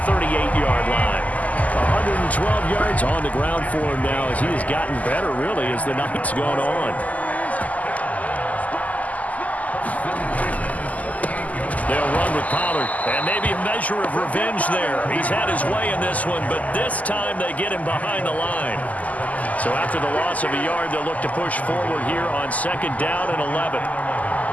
line. 12 yards on the ground for him now as he has gotten better, really, as the night's gone on. They'll run with Pollard, and maybe a measure of revenge there. He's had his way in this one, but this time they get him behind the line. So after the loss of a yard, they'll look to push forward here on 2nd down and 11.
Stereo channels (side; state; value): right; late; 0.075 ms